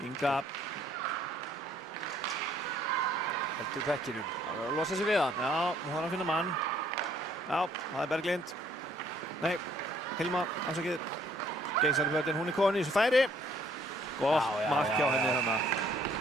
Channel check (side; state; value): both; normal; correlation 0.63